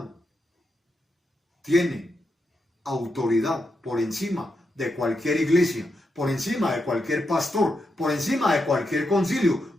tiene autoridad por encima de cualquier iglesia, por encima de cualquier pastor, por encima de cualquier concilio,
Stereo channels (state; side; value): normal; both; correlation 0.84